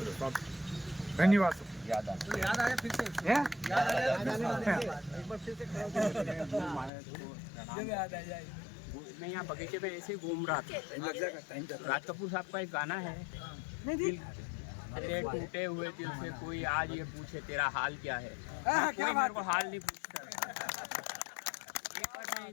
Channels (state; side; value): drops out; right; at 6.9 s